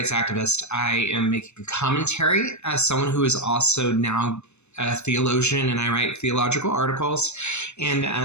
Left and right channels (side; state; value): right; late; 0.81 ms